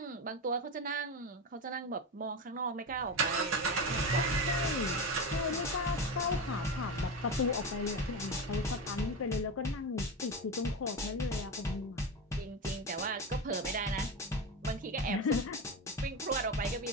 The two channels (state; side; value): normal; both; correlation 0.20